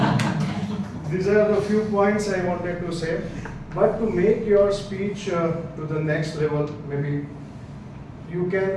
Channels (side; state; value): both; identical; correlation 1.00